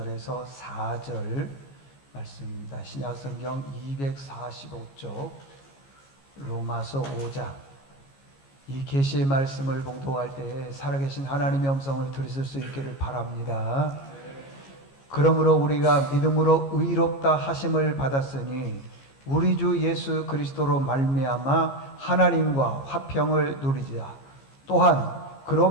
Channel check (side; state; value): right; late; 15 ms